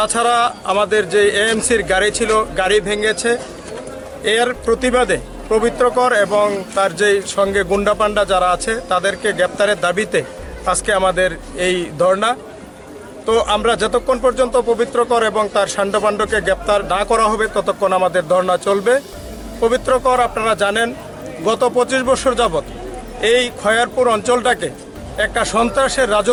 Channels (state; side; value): identical; both; correlation 1.00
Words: আমাদের যে এএমসির গাড়ি ছিল গাড়ি ভেঙেছে। এর প্রতিবাদে পবিত্রকর এবং তার যে সঙ্গে গুন্ডাপান্ডা যারা আছে তাদেরকে গ্রেপ্তারের দাবিতে আজকে আমাদের এই ধর্ণা। তো আমরা যতক্ষণ পর্যন্ত পবিত্রকর এবং তার সান্ডপাণ্ডকে গ্রেপ্তার না করা হবে ততক্ষণ আমাদের ধর্ণা চলবে। পবিত্রকর আপনারা জানেন গত 25 বছর যাবৎ এই খয়ারপুর অঞ্চলটাকে একটা সন্ত্রাসের